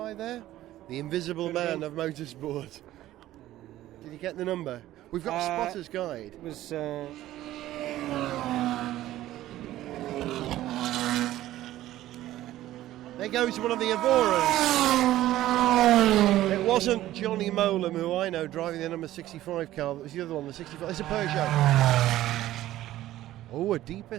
there? The invisible man of motorsport. Did you get the number? We've got a spotter's guide. It was. There goes one of the Evoras. It wasn't Johnny Molam, who I know, driving the number 65 car. That was the other one, the 65. It's a Peugeot. Oh, a deeper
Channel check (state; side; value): quieter; left; 14.5 dB